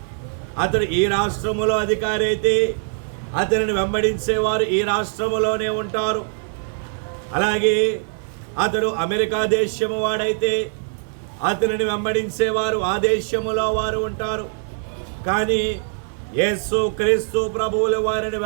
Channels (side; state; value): left; silent; 64 dB below the other